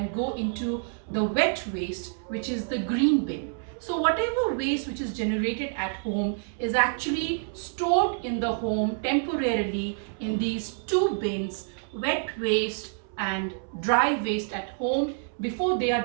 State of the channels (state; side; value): silent; left; 60 dB below the other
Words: go into the wet waste, which is the green bin. So whatever waste which is generated at home is actually stored in the home temporarily in these two bins, wet waste and dry waste at home, before they